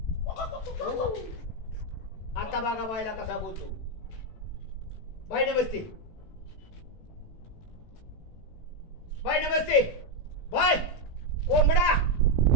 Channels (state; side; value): late; right; 18 ms